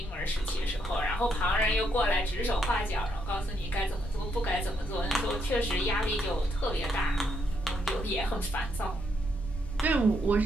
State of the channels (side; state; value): both; normal; correlation 0.76